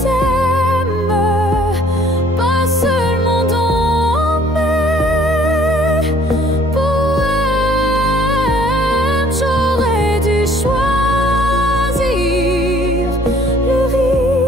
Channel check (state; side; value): normal; both; correlation 0.58